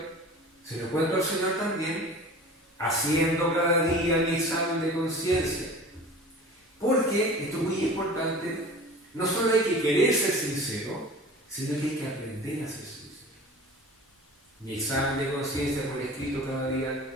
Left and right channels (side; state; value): both; normal; correlation 0.39